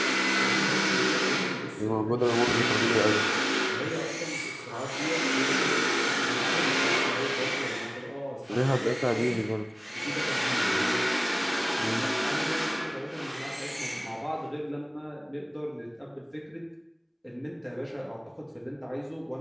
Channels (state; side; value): identical; both; correlation 1.00